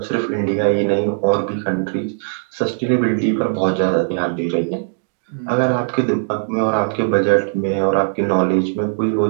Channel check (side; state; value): left; silent; digital silence